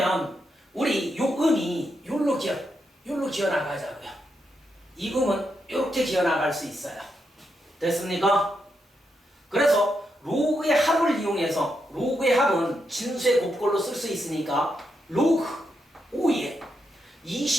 우리 요 음이 요로 기어 나가자고요. 이 음은 이렇게 기어 나갈 수 있어요. 됐습니까? 그래서 로그의 합을 이용해서 로그의 합은 진수의 곱꼴로 쓸 수 있으니까 로그 5의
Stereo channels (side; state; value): both; normal; correlation 0.83